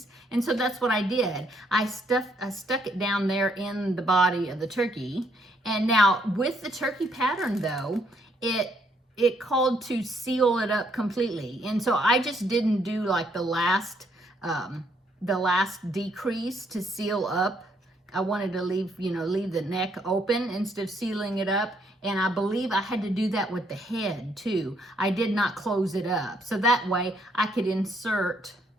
And so that's what I did. I stuck it down there in the body of the turkey. And now with the turkey pattern, though, it called to seal it up completely. And so I just didn't do like the last decrease to seal up. I wanted to leave the neck open instead of sealing it up. And I believe I had to do that with the head too. I did not close it up. So that way I could insert,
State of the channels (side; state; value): both; normal; correlation 0.71